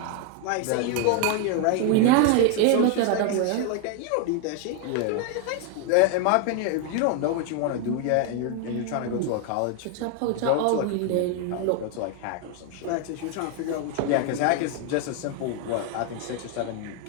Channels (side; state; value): both; different; correlation 0.01